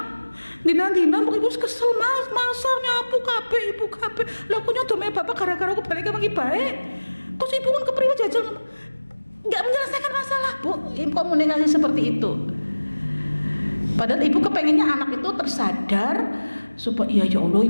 Dina ibu kesel mas, masa nyapu kabeh ibu kabeh. Lah aku nyodome bapak gara-gara aku balik ke baik. Terus ibu kan kepriwe jajal nggak menyelesaikan masalah bu. Komunikasi seperti itu. Padahal ibu kepengennya anak itu tersadar supaya ya Allah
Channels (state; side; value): inverted; both; correlation -1.00